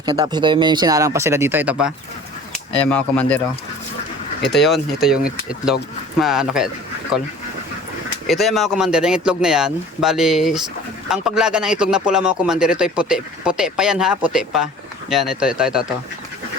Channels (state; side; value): normal; both; correlation 0.45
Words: niya. Tapos ito yung may sinalang pa sila dito, ito pa. Ayan mga commander, oh. Ito yung itlog. Ano kaya call? Ito yung mga commander, yung itlog na yan. Bali, ang paglaga ng itlog na pula mga commander, ito ay puti. Puti pa yan ha, puti pa. Yan, ito.